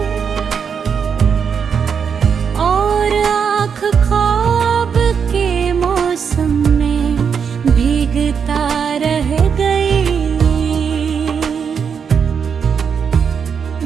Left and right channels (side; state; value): left; quieter; 6.7 dB